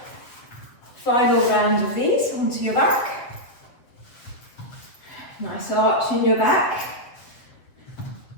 Final round of these onto your back. Nice arch in your back.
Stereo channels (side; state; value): right; late; 7.9 ms